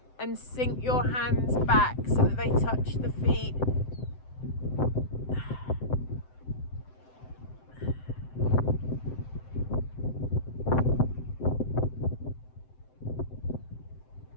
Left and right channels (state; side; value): late; right; 7.8 ms